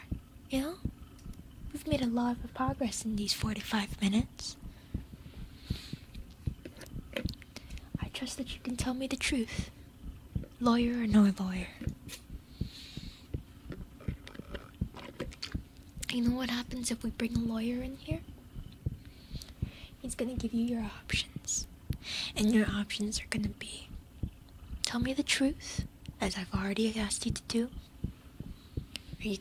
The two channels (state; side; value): identical; both; correlation 1.00